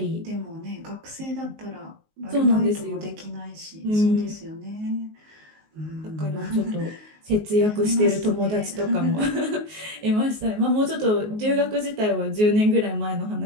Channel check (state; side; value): late; left; 19 ms